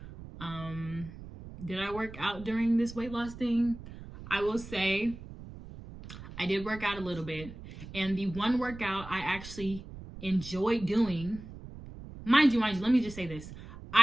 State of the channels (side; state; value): right; noise; rumble, 14 dB below the sound